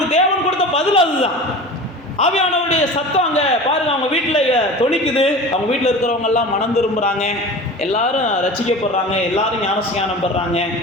தேவன் கொடுத்த பதில் அதுதான். ஆவியானவருடைய சத்தம் அங்கே பாருங்க, அவங்க வீட்டில் தொனிக்குது. அவங்க வீட்டில் இருக்கிறவங்க எல்லாம் மனம் திரும்புகிறாங்க, எல்லாரும் ரட்சிக்கப்படுறாங்க, எல்லாரும் ஞானஸ்நானம் பெறாங்க.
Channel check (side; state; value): both; normal; correlation 0.35